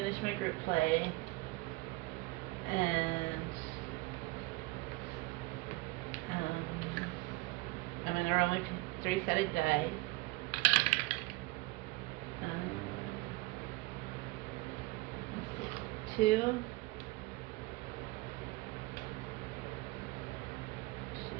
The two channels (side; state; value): left; quieter; 22.0 dB